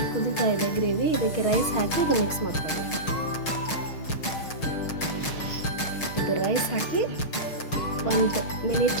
ಕುದೀತಾ ಇದೆ ಗ್ರೇವಿ. ಇದಕ್ಕೆ ರೈಸ್ ಹಾಕಿ ಇದು ಮಿಕ್ಸ್ ಮಾಡ್ಕೋಬೇಕು. ಇದು ರೈಸ್ ಹಾಕಿ 1 ಮಿನಿಟ್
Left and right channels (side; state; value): right; late; 6.4 ms